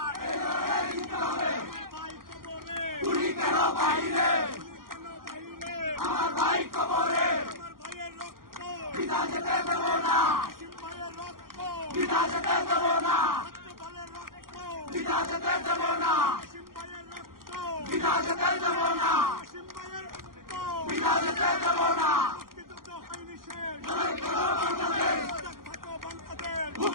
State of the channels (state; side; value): late; left; 0.91 ms